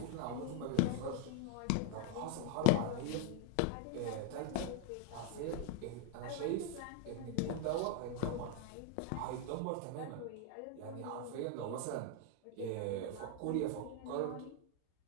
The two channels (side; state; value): both; different; correlation 0.01